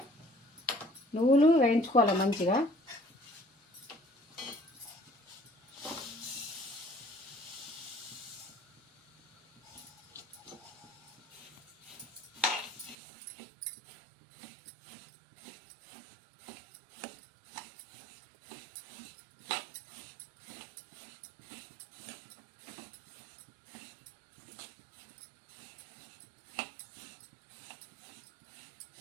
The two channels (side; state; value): left; drops out; at 13.0 s